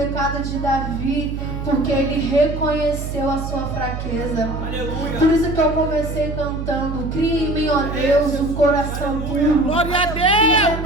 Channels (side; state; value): right; noise; hum, 6 dB below the sound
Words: de Davi porque ele reconheceu a sua fraqueza. Aleluia. Por isso que eu comecei cantando: cria em mim, ó Deus, um coração puro Glória a E Deus.